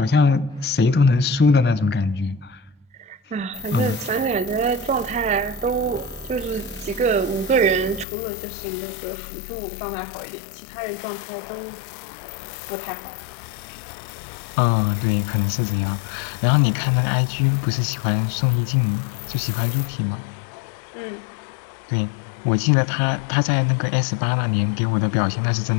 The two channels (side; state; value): right; drops out; at 8.1 s